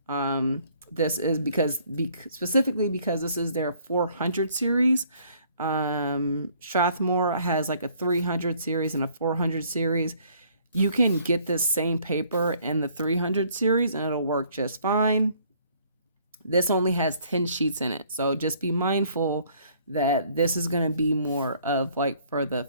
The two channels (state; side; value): inverted; both; correlation -0.61